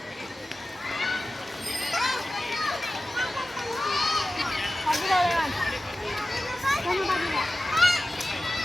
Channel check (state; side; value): normal; both; correlation 0.95